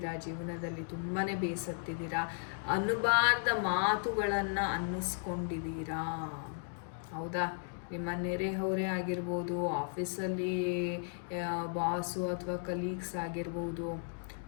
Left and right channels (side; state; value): right; silent; digital silence